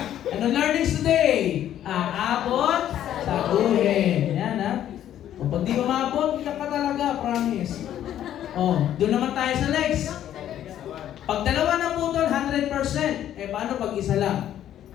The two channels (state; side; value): quieter; right; 11.2 dB